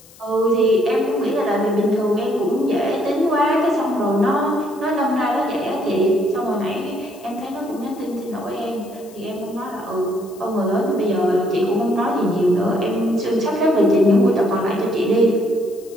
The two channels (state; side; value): noise; left; hiss, 24 dB below the sound